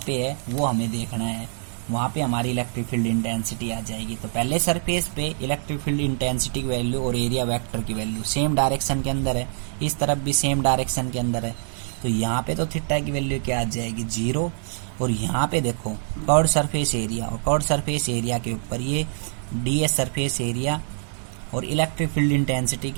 पे है वो हमें देखना है, वहाँ पे हमारी इलेक्ट्रिक फील्ड इंटेंसिटी आ जाएगी। तो पहले सरफेस पे इलेक्ट्रिक फील्ड इंटेंसिटी की वैल्यू और एरिया वेक्टर की वैल्यू सेम डायरेक्शन के अंदर है, इस तरफ भी सेम डायरेक्शन के अंदर है। तो यहाँ पे तो थीटा की वैल्यू क्या आ जाएगी? 0। और यहाँ पे देखो कर्व्ड सरफेस एरिया, और कर्व्ड सरफेस एरिया के ऊपर ये ds सरफेस एरिया और इलेक्ट्रिक फील्ड इंटेंसिटी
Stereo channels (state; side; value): silent; left; digital silence